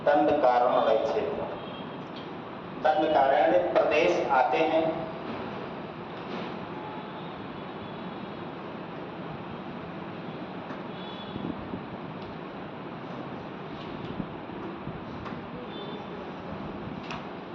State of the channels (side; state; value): both; identical; correlation 1.00